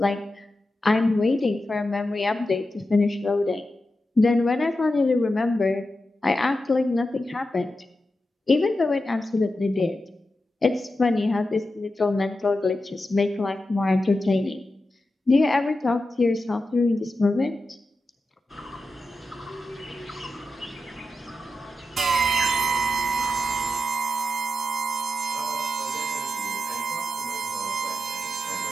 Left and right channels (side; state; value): both; normal; correlation 0.90